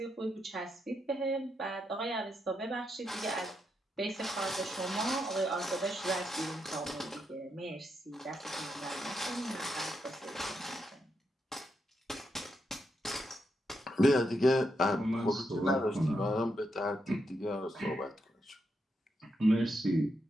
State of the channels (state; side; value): normal; both; correlation 0.82